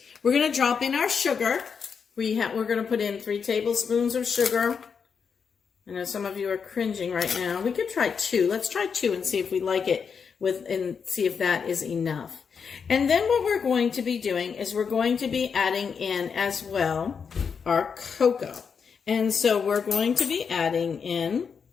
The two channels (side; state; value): right; quieter; 6.2 dB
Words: We're going to drop in our sugar. We're going to put in 3 tablespoons of sugar. I know some of you are cringing right now. We could try 2. Let's try 2 and see if we like it and see if that is enough. And then what we're going to be doing is we're going to be adding in as well our cocoa. And so we're going to be adding in